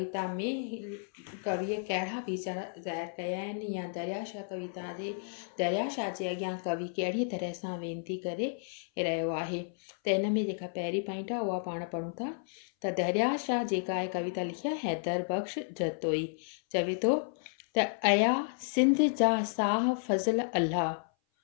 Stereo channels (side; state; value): right; silent; 56 dB below the other